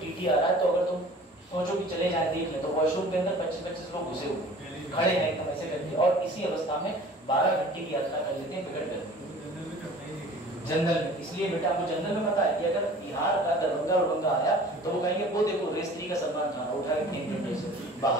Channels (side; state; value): both; normal; correlation 0.45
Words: आ रहा है, तो अगर तुम सोचो कि चले जाए देख ले, तो वॉशरूम के अंदर 25-25 लोग घुसे हुए खड़े हैं एकदम ऐसे करके, और इसी अवस्था में 12 घंटे की यात्रा कर लेते हैं बिगड़ कर जनरल में। इसलिए बेटा आपको जनरल में पता है कि अगर बिहार का दरभंगा उड़ंगा आया तो वो कहेंगे वो देखो रेस 3 का सलमान खान उठा के फेंक देंगे से